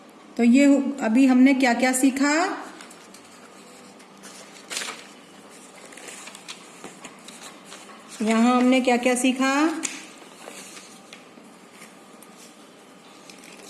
तो ये अभी हमने क्या क्या सीखा? यहाँ हमने क्या क्या सीखा?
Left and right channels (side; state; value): both; identical; correlation 1.00